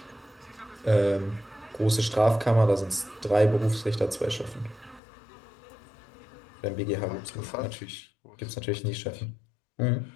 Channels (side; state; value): right; drops out; at 5.0 s